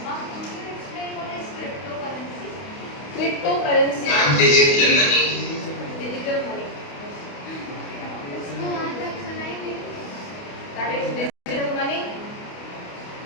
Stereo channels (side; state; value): right; late; 28 ms